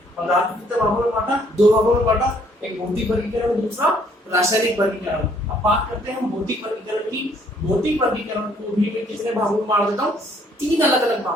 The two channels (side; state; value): both; normal; correlation 0.64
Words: पदार्थ कितने भागों में बांटा, 2 भागों में बांटा, एक भौतिक वर्गीकरण और दूसरा रासायनिक वर्गीकरण। अब बात करते हैं हम भौतिक वर्गीकरण की। भौतिक वर्गीकरण को भी मैं कितने भागों में बांट देता हूँ, 3 अलग अलग